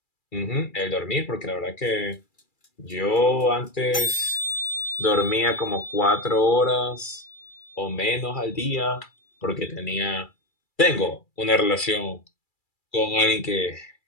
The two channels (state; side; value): late; right; 2.3 ms